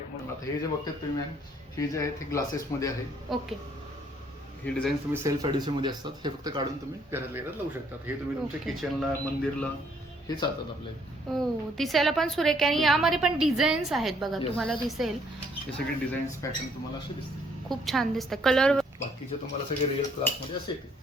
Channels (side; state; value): both; normal; correlation 0.66